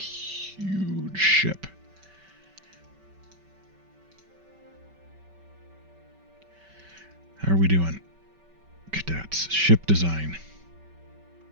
ship? How are we doing? Cadets. Ship design.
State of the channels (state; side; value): late; left; 5.2 ms